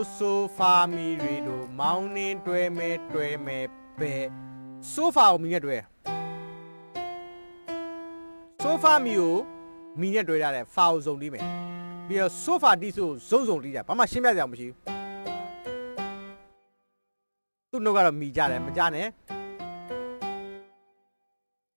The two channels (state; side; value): inverted; both; correlation -1.00